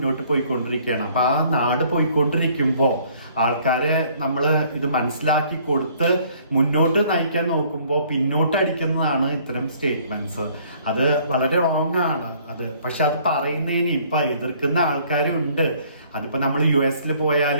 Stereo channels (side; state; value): both; inverted; correlation -0.59